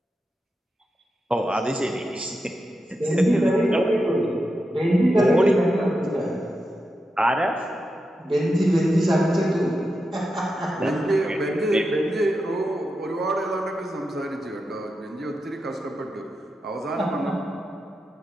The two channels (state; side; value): normal; both; correlation 0.88